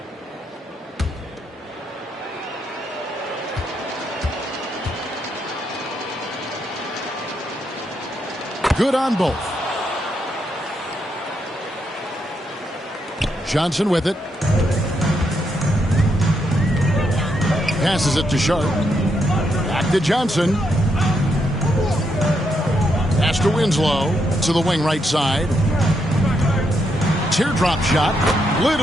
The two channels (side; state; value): both; normal; correlation 0.79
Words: Good on both. Johnson with it. Passes it to Sharp. Back to Johnson. Pass to Winslow. To the wing right side. Teardrop shot.